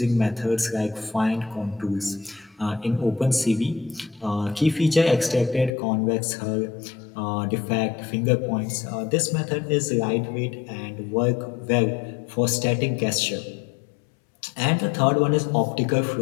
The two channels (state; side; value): drops out; right; at 5.7 s